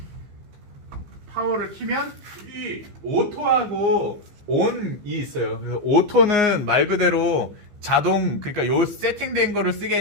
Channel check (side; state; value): left; late; 15 ms